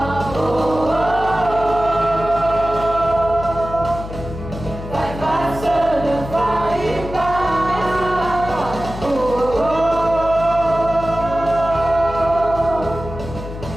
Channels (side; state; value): left; noise; hum, 10 dB below the sound